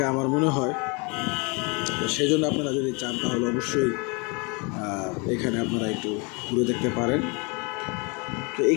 আমার মনে হয়। তো সেই জন্য আপনারা যদি চান তাহলে অবশ্যই এখানে আপনারা একটু ঘুরে দেখতে পারেন। তো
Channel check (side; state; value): right; quieter; 30.8 dB